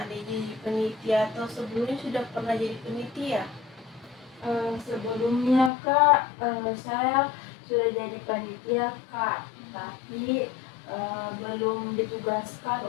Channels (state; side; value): drops out; right; at 5.7 s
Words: Ade jadi panitia atau sebelumnya sudah pernah jadi panitia? Sebelumnya Kak, saya sudah jadi panitia Kak, tapi belum ditugaskan